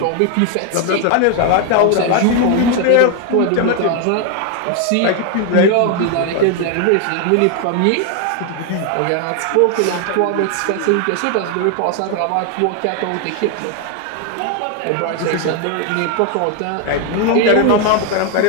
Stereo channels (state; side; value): different; both; correlation 0.01